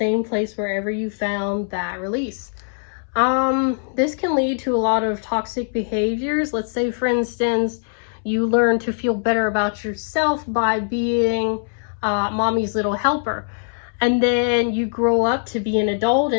place wherever you found that release. This can lead to a lot of toxic behaviors. Let's say, for instance, you learn to feel better about yourself by being mommy's little helper. And then you grow up to be an adult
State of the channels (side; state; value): right; silent; 65 dB below the other